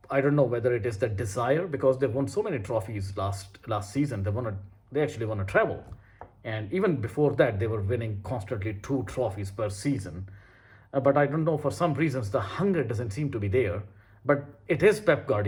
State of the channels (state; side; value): identical; both; correlation 1.00